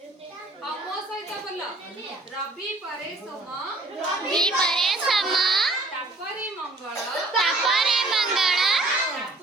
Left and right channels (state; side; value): quieter; left; 3.0 dB